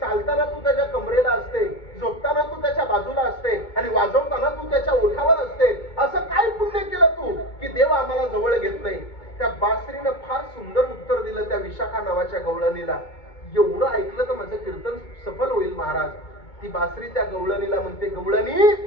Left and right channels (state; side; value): late; right; 2.2 ms